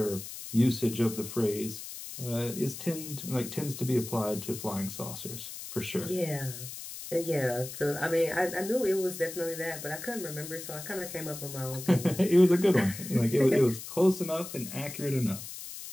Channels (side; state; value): left; noise; hiss, 10 dB below the sound